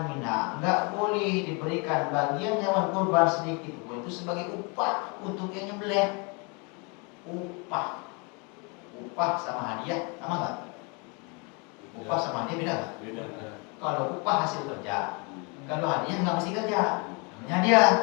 minha. Enggak boleh diberikan bagian hewan kurban sedikit pun, itu sebagai upah untuk yang nyembelih. Upah sama hadiah sama enggak? Upah sama hadiah beda enggak? Beda. Kalau upah hasil kerja, kalau hadiah nggak mesti kerja. Namanya dia,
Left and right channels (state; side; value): quieter; right; 32.1 dB